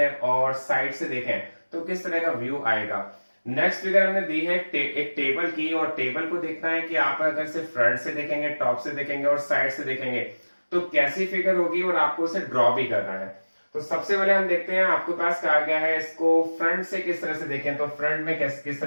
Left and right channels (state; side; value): inverted; both; correlation -1.00